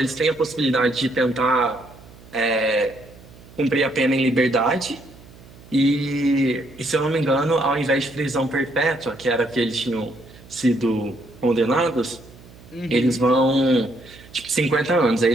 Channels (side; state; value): right; noise; hum, 22 dB below the sound